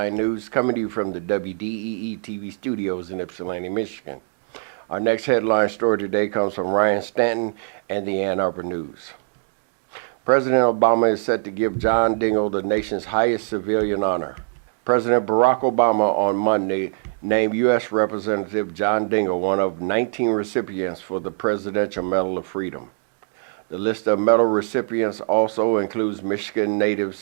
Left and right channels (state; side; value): silent; left; 64 dB below the other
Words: News, coming to you from the WDEE-TV studios in Ypsilanti, Michigan. Our next headline story today comes from Ryan Stanton and the Ann Arbor News. President Obama is set to give John Dingell the nation's highest civilian honor. President Barack Obama on Monday named U.S. Representative John Dingell one of 19 recipients for the Presidential Medal of Freedom. The list of medal recipients also includes Michigan